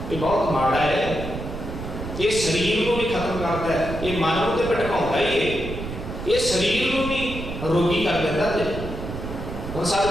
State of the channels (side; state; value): right; noise; rumble, 8 dB below the sound